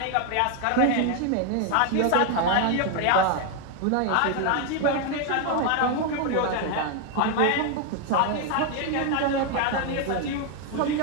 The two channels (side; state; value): both; different; correlation 0.01